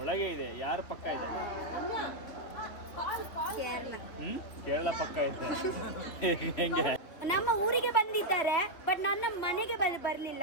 ಇದೆ. ಯಾರು ಪಕ್ಕ ಇದೆ? ಕೇರಳ ಪಕ್ಕ ಇದೆ. ಹೆಂಗೆ? ನಮ್ಮ ಊರಿಗೆ ಬಂದಿದ್ದಾರೆ, ಬಟ್ ನನ್ನ ಮನೆಗೆ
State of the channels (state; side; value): late; right; 3.3 ms